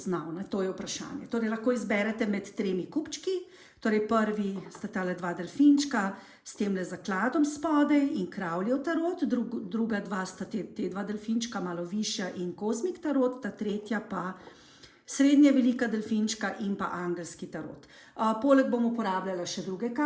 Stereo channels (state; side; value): identical; both; correlation 1.00